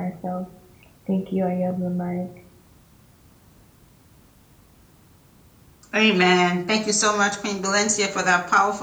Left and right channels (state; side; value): identical; both; correlation 1.00